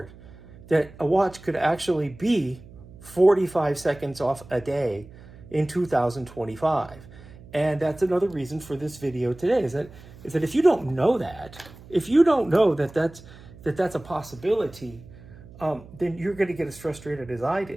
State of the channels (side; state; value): right; noise; hum, 20 dB below the sound